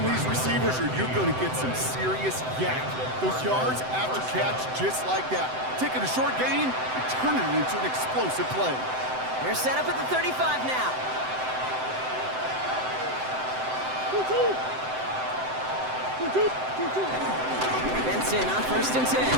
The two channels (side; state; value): left; late; 7.8 ms